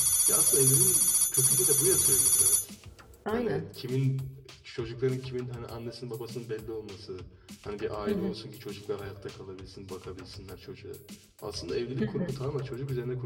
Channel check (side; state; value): both; identical; correlation 1.00